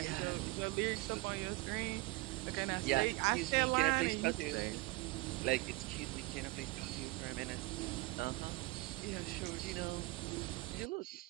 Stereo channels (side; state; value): left; quieter; 22.1 dB